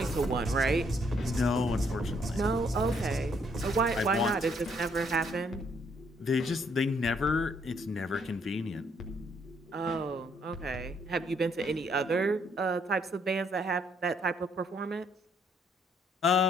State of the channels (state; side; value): normal; both; correlation 0.68